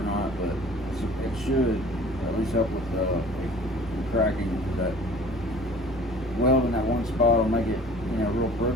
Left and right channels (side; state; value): both; normal; correlation 0.47